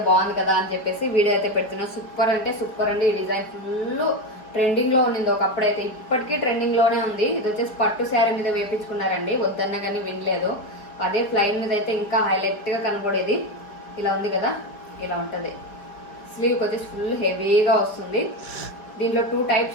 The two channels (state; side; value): late; right; 4.8 ms